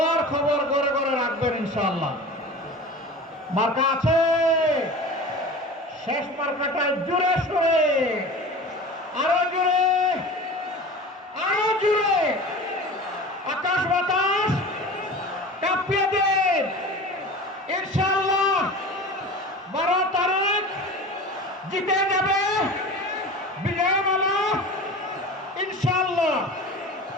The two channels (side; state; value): both; normal; correlation 0.36